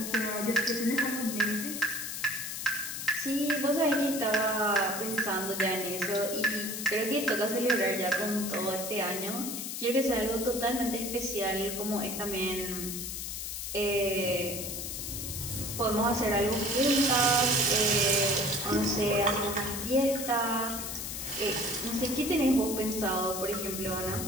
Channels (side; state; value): left; noise; hiss, 5 dB below the sound